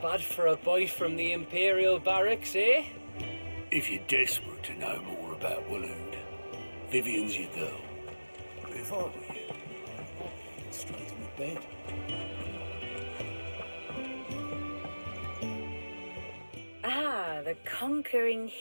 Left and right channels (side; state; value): both; inverted; correlation -1.00